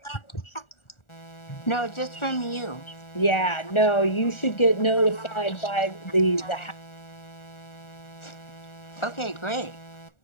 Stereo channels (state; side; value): late; right; 1.4 ms